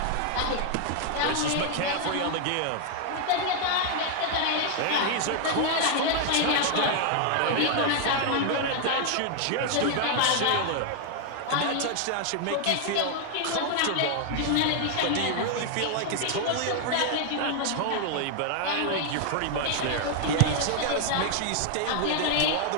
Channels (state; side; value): different; both; correlation 0.00